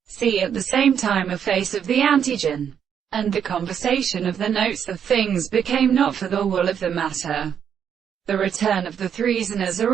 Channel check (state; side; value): quieter; left; 8.2 dB